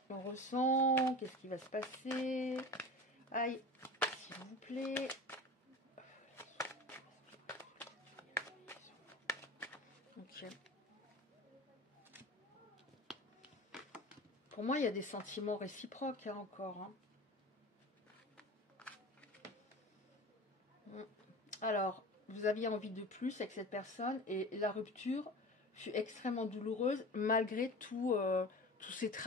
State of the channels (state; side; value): normal; both; correlation 0.33